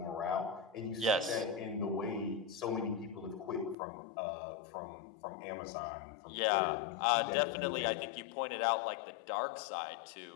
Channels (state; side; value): drops out; right; at 3.8 s